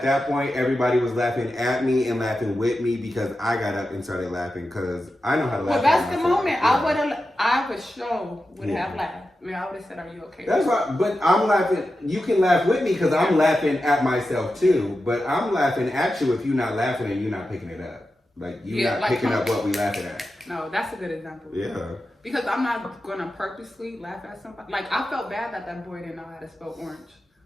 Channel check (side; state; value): both; normal; correlation 0.91